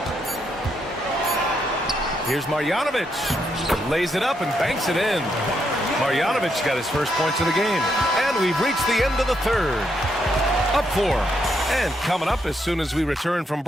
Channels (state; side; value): normal; both; correlation 0.78